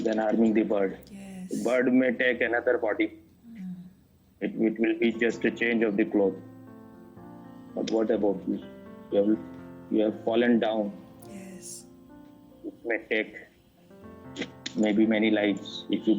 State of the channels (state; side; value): identical; both; correlation 1.00